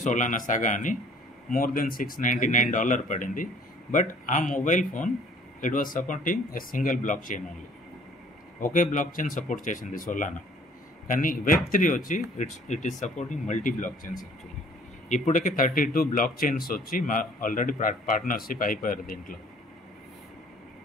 సోలానా సాగా అని, more than $699 పడింది. బట్ ఆ mobile phone it was supporting a single blockchain only, ఒకే బ్లాక్ చైన్ సపోర్ట్ చేసింది సోలానా. కానీ Web3 వచ్చి it is supporting multi blockchains actually. ఇప్పటికే 32 బ్లాక్ చైన్స్ వచ్చి ఆల్రెడీ పార్ట్నర్షిప్ అయిపోయారు దీంట్లో.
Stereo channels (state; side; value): normal; both; correlation 0.55